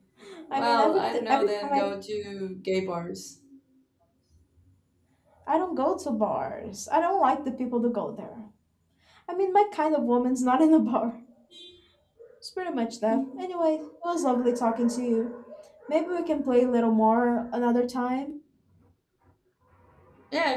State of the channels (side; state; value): both; identical; correlation 1.00